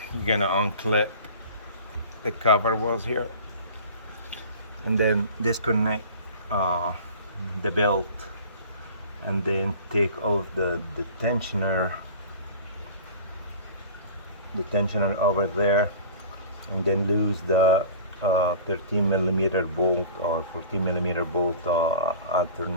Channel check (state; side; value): inverted; both; correlation -0.41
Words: you're gonna unclip the cover was here, and then disconnect uh, the belt, and then take off the tensioner over there, and then lose the 13 millimeter bolt or 14 millimeter bolt